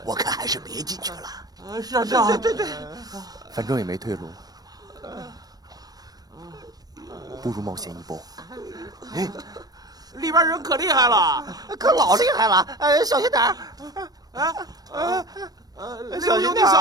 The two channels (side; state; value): left; late; 0.19 ms